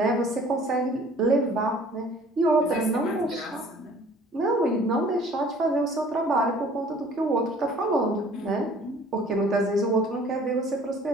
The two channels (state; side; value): normal; both; correlation 0.52